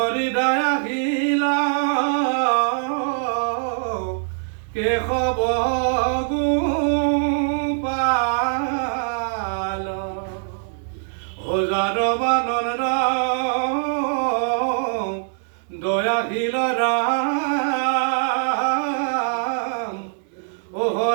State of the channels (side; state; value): left; silent; digital silence